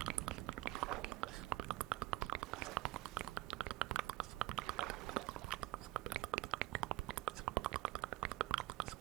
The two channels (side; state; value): left; quieter; 18.5 dB